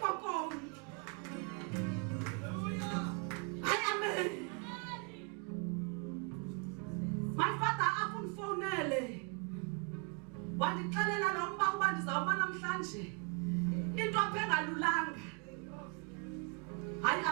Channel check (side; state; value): left; quieter; 36.9 dB